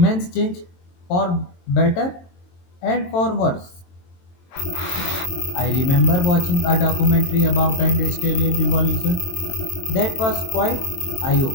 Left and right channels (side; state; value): right; late; 23 ms